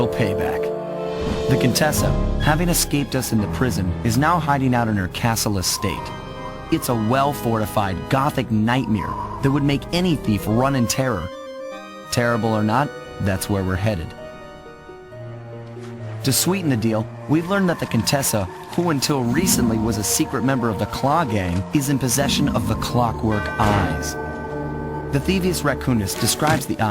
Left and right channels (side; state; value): both; identical; correlation 1.00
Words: payback. The Contessa, having escaped us in the prison, is now hiding out in her castle estate. It's a well-fortified Gothic nightmare that would make any thief run in terror. Terrible or not, that's where we're headed. To sweeten the deal, we've learned that the Contessa, who until recently was a secret member of the Claw Gang, is in possession of the clockwork eyes. The Thieves Raccoonist describes the